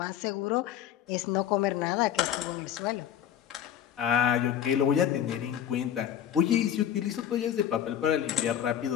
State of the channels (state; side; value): quieter; right; 10.1 dB